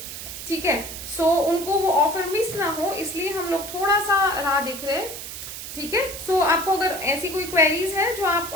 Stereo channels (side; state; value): right; noise; hiss, 9 dB below the sound